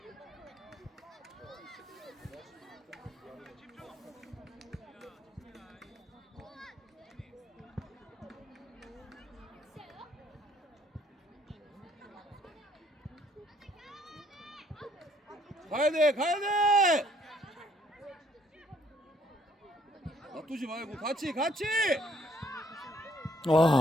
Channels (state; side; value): normal; both; correlation 0.65